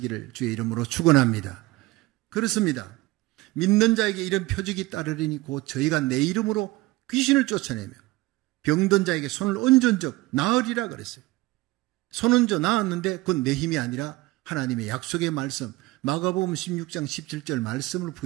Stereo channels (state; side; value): quieter; left; 20.0 dB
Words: 주의 이름으로 축원합니다. 그렇습니다. 믿는 자에게 이런 표적이 따르리니 곧 저희가 내 이름으로 귀신을 쫓아내며 병든 자에게 손을 얹은 적 나으리라 그랬어요. 손 얹어 나았는데 그건 내 힘이 아니라 하나님의 약속의 말씀, 마가복음 16장 17절 말씀을